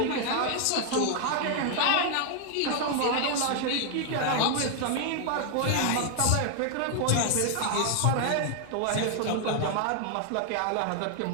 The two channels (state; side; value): different; both; correlation 0.00